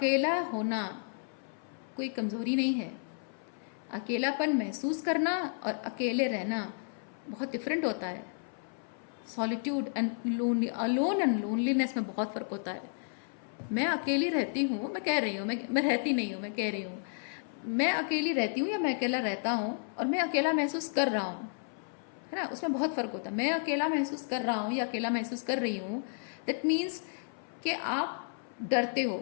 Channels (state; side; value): silent; right; 56 dB below the other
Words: होना कोई कमज़ोरी नहीं है। अकेलापन महसूस करना और अकेले रहना बहुत डिफरेंट होता है। Solitude and lonely, alone and loneliness में बहुत फ़र्क होता है। मैं अकेली रहती हूँ, मैं कह रही हूँ, मैं रहती नहीं हूँ, मैं कह रही हूँ, मैं अकेली रहती हूँ या मैं अकेला रहता हूँ और मैं अकेला महसूस कर रहा हूँ, है ना, उसमें बहुत फर्क होता है। मैं अकेला महसूस कर रहा हूँ या अकेला महसूस कर रही हूँ, दैट मीन्स कि आप डरते हो,